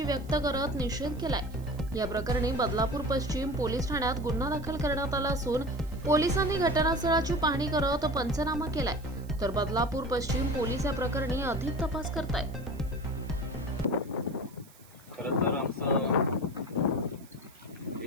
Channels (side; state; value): right; noise; hiss, 25 dB below the sound